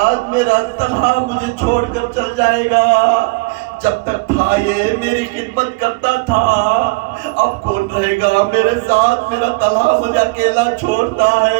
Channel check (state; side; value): quieter; left; 25.6 dB